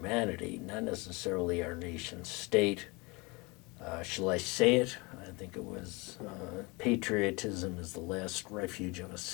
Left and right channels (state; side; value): quieter; right; 26.8 dB